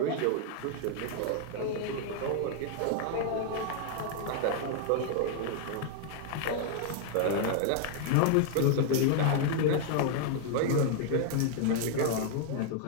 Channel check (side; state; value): both; different; correlation 0.00